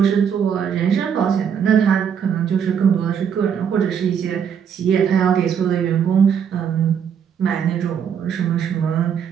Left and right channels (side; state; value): left; quieter; 7.7 dB